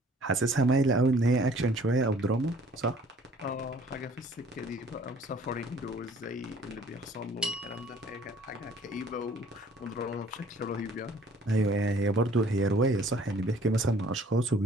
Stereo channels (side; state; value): both; normal; correlation 0.55